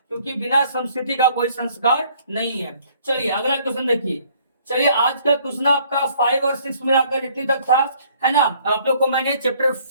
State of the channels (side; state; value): both; inverted; correlation -0.60